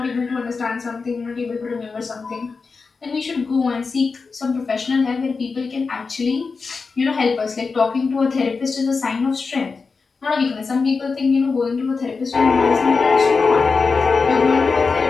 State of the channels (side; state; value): right; quieter; 4.6 dB